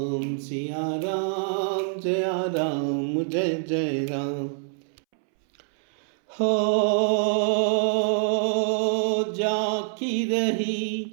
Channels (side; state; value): left; silent; 61 dB below the other